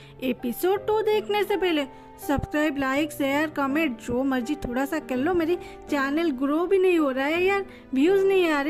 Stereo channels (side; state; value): both; identical; correlation 1.00